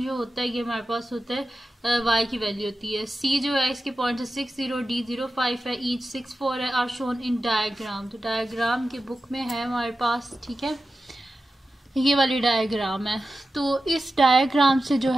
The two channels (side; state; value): both; normal; correlation 0.93